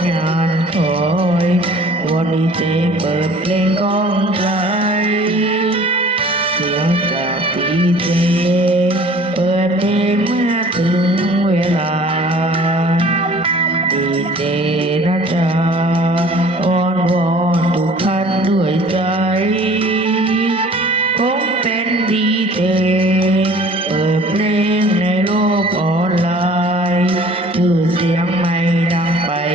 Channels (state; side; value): normal; both; correlation 0.50